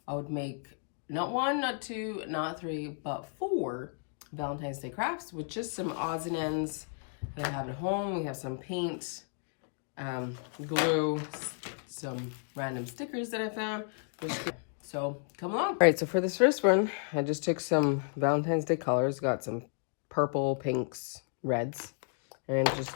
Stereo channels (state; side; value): silent; right; 56 dB below the other